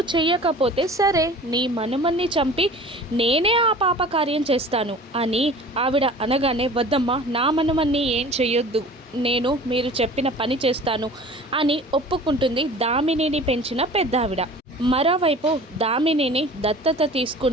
చెయ్యకపోతే సరే నీ మనుమన్ని చంపి నేనే ఆ పాప కార్యం చేస్తాను అని ఆవిడ అనగానే వద్దమ్మా నా మనుమన్ని ఏం చెయ్యొద్దు నేను మీరు చెప్పిన పని చేస్తాను అని ఒప్పుకుంటుంది దామినిని పెంచిన పెద్దావిడ. మరోవైపు దామినిని దత్తత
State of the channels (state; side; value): normal; both; correlation 0.43